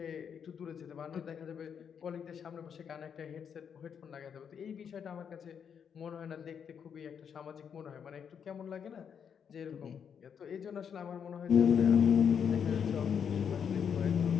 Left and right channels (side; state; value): right; quieter; 7.5 dB